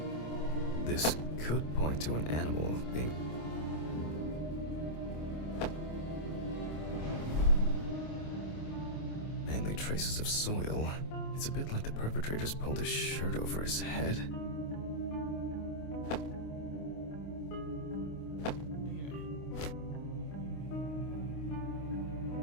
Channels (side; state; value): right; late; 26 ms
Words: This could point to an animal being... mainly traces of soil. It's a bit like the perpetrator's pulled his shirt over his head.